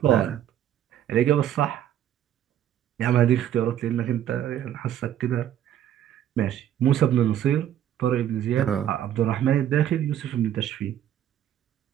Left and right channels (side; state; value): left; quieter; 10.9 dB